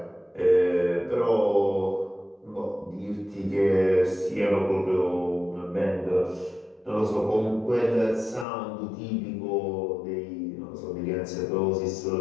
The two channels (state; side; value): drops out; right; at 8.5 s